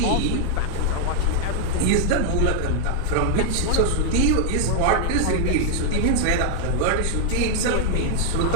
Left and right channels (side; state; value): both; different; correlation 0.00